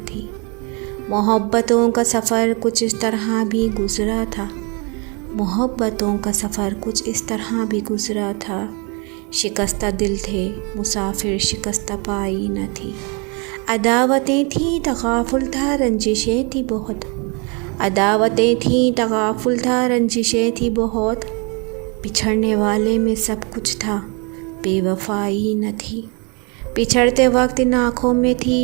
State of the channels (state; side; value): quieter; left; 32.7 dB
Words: تھی۔ محبتوں کا سفر کچھ اس طرح بھی گزرا تھا، محبتوں کا سفر کچھ اس طرح بھی گزرا تھا، شکستہ دل تھے مسافر شکستہ پائی نہ تھی۔ عداوتیں تھیں تغافل تھا رنجشیں تھی بہت، عداوتیں تھیں تغافل تھا رنجشیں تھی بہت، بچھڑنے والے میں سب کچھ تھا بے وفائی نہ تھی۔ بچھڑتے وقت ان آنکھوں میں تھی